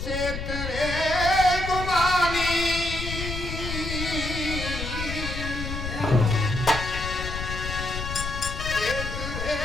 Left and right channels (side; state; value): left; noise; rumble, 5 dB below the sound